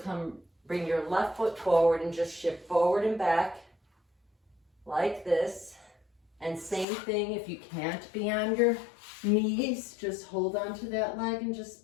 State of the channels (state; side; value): drops out; right; at 6.9 s